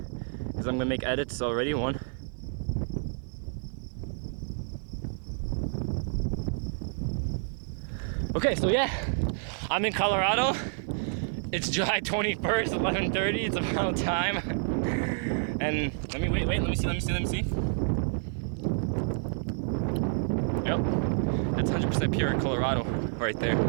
because I'm gonna make edits already. 1. Okay, so yeah, I'm in Colorado. It's July 21st, 11:30. It's about time. And let me let me see. Yep, that's 100% pure Colorado right there.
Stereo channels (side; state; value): left; silent; digital silence